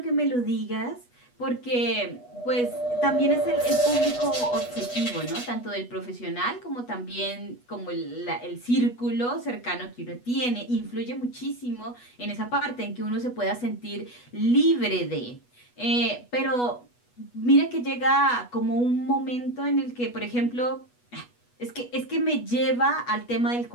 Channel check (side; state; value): right; late; 8.2 ms